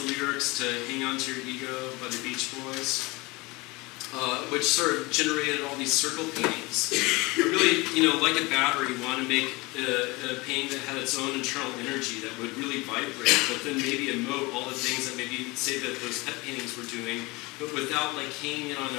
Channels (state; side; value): quieter; right; 24.0 dB